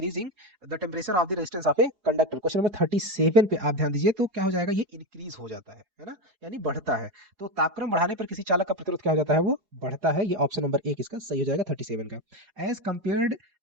the temperature of the resistance of a conductor. Question number 37 पे आप ध्यान दीजिए, तो क्या हो जाएगा, ये इंक्रीज हो जाता है ना, यानी बढ़ता है। तो तापक्रम बढ़ाने पर किसी चालक का प्रतिरोध क्या हो जाता है, वो बढ़ता है। ये ऑप्शन नंबर एक इसका सही हो जाएगा 37 का। As compared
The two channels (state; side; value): late; left; 4.8 ms